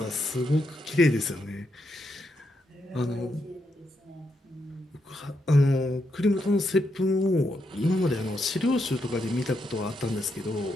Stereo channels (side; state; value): both; normal; correlation 0.81